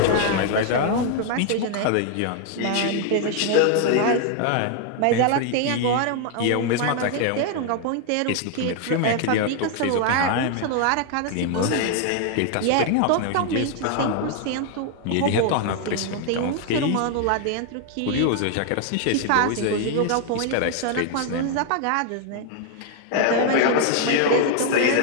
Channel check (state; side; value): different; both; correlation 0.00